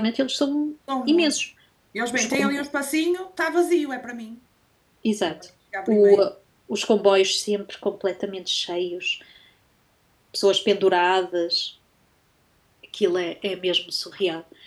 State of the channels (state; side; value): identical; both; correlation 1.00